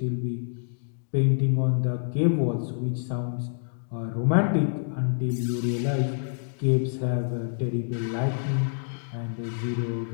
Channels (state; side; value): silent; right; digital silence